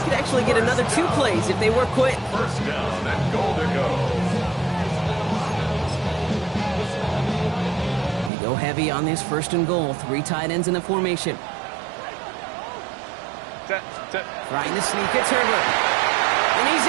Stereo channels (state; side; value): drops out; left; at 8.3 s